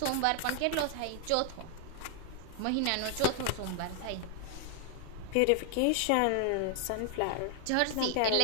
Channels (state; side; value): different; both; correlation 0.00